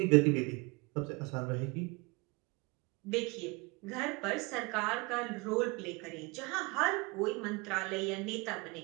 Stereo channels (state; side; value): quieter; left; 27.2 dB